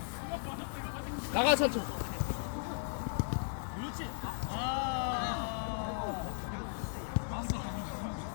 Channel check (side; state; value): right; silent; digital silence